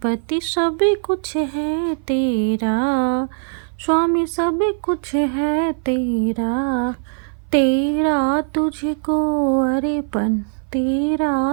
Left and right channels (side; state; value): left; silent; 58 dB below the other